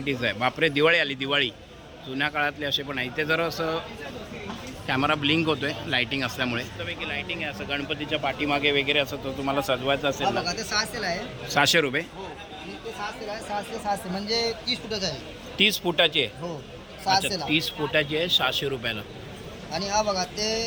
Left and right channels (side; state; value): both; identical; correlation 1.00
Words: आहे. बापरे, दिवाळी आली, दिवाळी. जुन्या काळातले असे पण आहे. इथे जर असं कॅमेरा ब्लिंक होतोय लाईटिंग असल्यामुळे. त्यापैकी लाईटिंग आहे असं गणपतीच्या पाठीमागे वगैरे असं, तो तुम्हाला सजवायचं असेल ना. बघा ते 600 ला आहे. 600 रुपये. हो, आणि ते 600 ला आहे. 600 म्हणजे 30 फुटाचा आहे. 30 फुटाची आहे. हो, अच्छा, 600 ला. 30 फुटाची आहे, 600 रुपयाला. आणि हा बघा ते